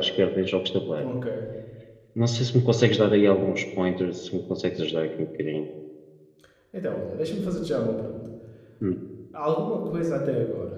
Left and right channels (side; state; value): both; identical; correlation 1.00